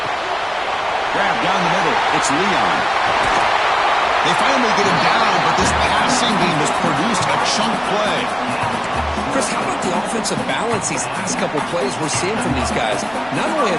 Grab down the middle. It's Leon. They finally get him down, but this passing game has produced a chunk play. Chris, how about the offensive balance these last couple plays we're seeing from these guys? Not only are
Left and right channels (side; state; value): right; noise; rumble, 25 dB below the sound